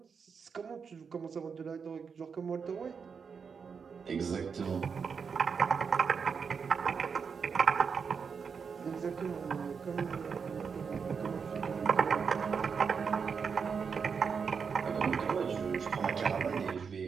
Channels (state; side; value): quieter; left; 6.0 dB